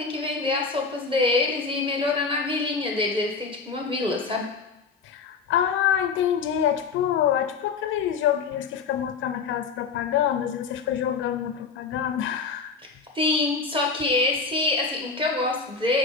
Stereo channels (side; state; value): right; quieter; 5.2 dB